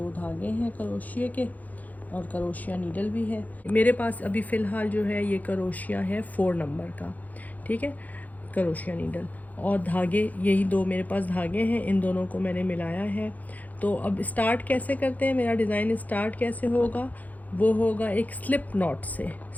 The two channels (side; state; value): right; late; 0.079 ms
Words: धागे हैं करोशिये के और करोशिया नीडल भी है मेरे पास। अभी फ़िलहाल जो है ये करोशिया है 4 नंबर का, ठीक है, करोशिया नीडल और धागे, यही 2 मेरे पास धागे हैं, इन दोनों को मैंने मिलाया है। तो अब स्टार्ट कैसे करते हैं, मेरा डिज़ाइन स्टार्ट कैसे होगा, वो होगा एक स्लिप नॉट से।